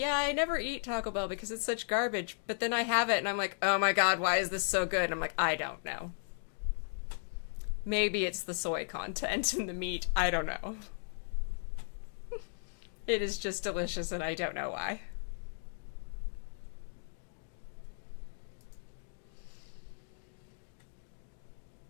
I never eat Taco Bell because it's such garbage. But then I have it and I'm like, oh my god, why is this so good? And I'm like, I don't know. Maybe it's the soy content in the meat. I don't know. It is just delicious and I don't know why.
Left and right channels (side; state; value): right; silent; digital silence